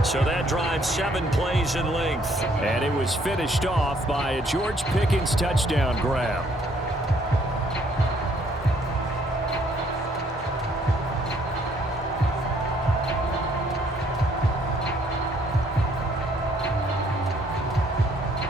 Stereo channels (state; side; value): normal; both; correlation 0.65